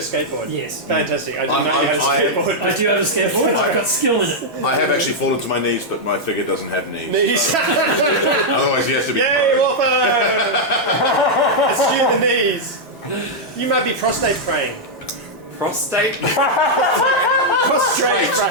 skateboard? Yes. Fantastic. I do not have a skateboard. I do have a skateboard. I've got skill in it. I have actually fallen to my knees, but my figure doesn't have knees. Knees. Otherwise, he has to be. Yay, Warpo! Assume the knees. You might be prostate praying. Prostate? Prostrate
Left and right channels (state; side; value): normal; both; correlation -0.04